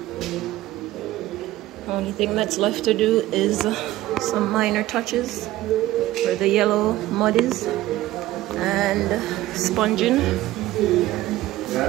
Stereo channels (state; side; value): quieter; left; 15.9 dB